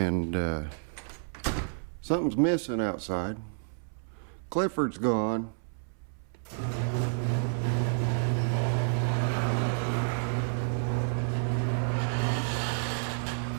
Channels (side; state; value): left; silent; 58 dB below the other